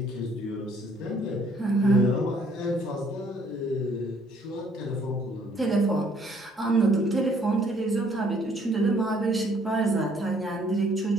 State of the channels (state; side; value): normal; both; correlation 0.63